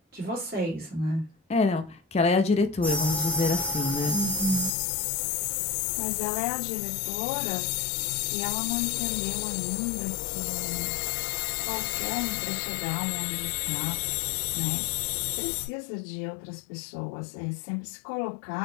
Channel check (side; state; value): right; drops out; at 4.8 s